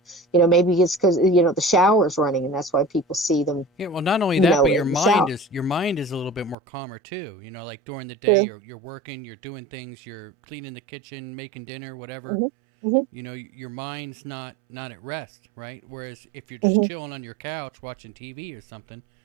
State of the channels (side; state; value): left; drops out; at 6.6 s